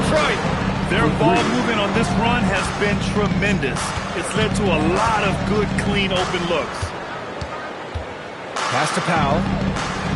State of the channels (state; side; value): identical; both; correlation 1.00